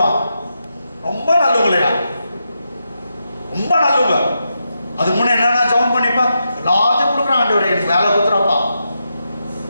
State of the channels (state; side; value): inverted; both; correlation -0.85